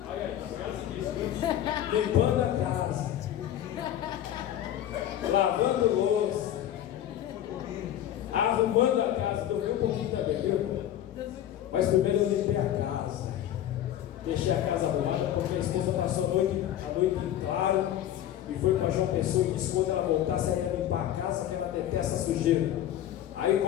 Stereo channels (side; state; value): right; quieter; 11.6 dB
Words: Olha aí, tá limpando a casa. Lavando louça. Arrumando a casa. Dormi um pouquinho também, viu? Mas primeiro eu limpei a casa. Deixei a casa arrumada porque a esposa passou a noite em claro e foi para João Pessoa e disse que quando ela voltasse ela ia limpar a casa, que ela detesta sujeira. Aí,